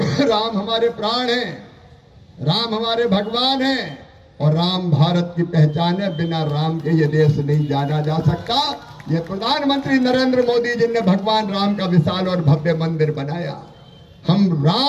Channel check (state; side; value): identical; both; correlation 1.00